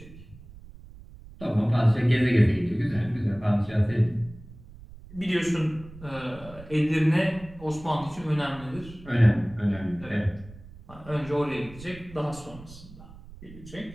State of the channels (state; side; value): noise; right; rumble, 18 dB below the sound